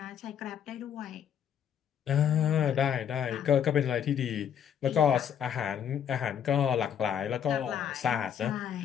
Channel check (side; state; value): right; quieter; 8.8 dB